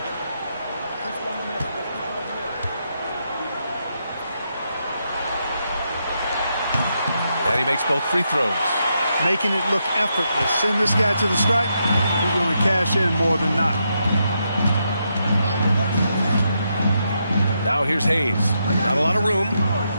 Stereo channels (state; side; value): inverted; both; correlation -0.81